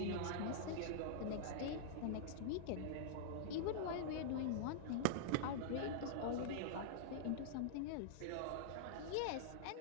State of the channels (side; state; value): both; different; correlation -0.02